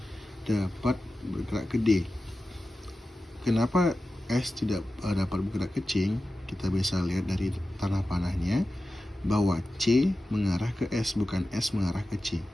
dapat bergerak ke D. Kenapa S tidak dapat bergerak ke C? Kita bisa lihat dari tanah panahnya bahwa C mengarah ke S, bukan S mengarah ke C.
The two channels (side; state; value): both; normal; correlation 0.94